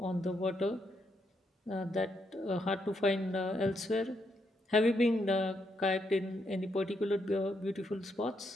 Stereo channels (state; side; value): normal; both; correlation 0.78